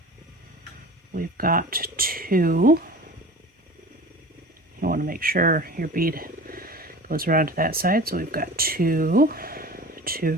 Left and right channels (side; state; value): both; normal; correlation 0.37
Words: we've got 2. You want to make sure your bead goes around to that side. So we've got 2,